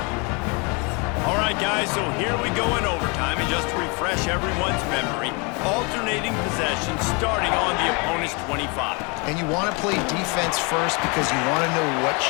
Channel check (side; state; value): right; quieter; 31.3 dB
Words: All right, guys, so here we go in overtime, and just to refresh everyone's memory, alternating possession starting on the opponent's 25. And you want to play defense first because you want to know what